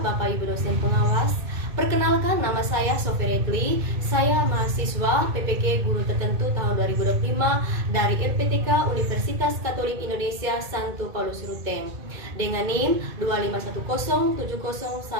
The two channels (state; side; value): late; left; 2.2 ms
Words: Ibu dosen pengawas. Perkenalkan, nama saya Sophie Redli. Saya mahasiswa PPK Guru Tertentu tahun 2025 dari LPTK Universitas Katolik Indonesia Santo Paulus Ruteng dengan NIM